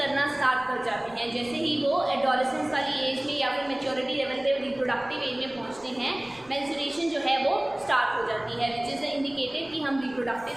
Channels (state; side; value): noise; right; rumble, 27 dB below the sound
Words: स्टार्ट कर जाते हैं। जैसे ही वो एडोलेसेंस वाली एज में या फिर मैच्योरिटी लेवल पे रिप्रोडक्टिव एज में पहुंचते हैं, मेंस्ट्रुएशन जो है वो स्टार्ट हो जाती है, विच इज़ इंडिकेटेड कि हम रिप्रोडक्टिव